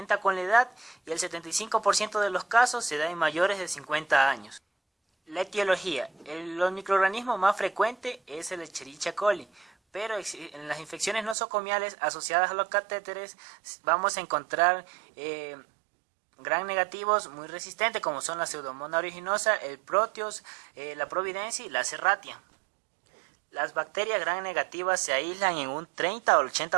con la edad y el 75% de los casos se da en mayores de 50 años. La etiología. Los microorganismos más frecuentes es el Escherichia coli, pero en las infecciones nosocomiales asociadas a los catéteres vamos a encontrar gram negativos muy resistentes, como son la Pseudomonas aeruginosa, el Proteus, la Providencia y la Serratia. Las bacterias gram negativas se aíslan en un 30 o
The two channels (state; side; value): drops out; left; at 11.4 s